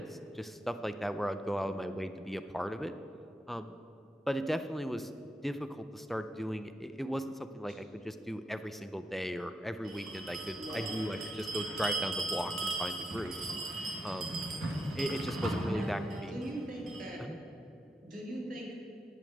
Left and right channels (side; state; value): both; normal; correlation 0.84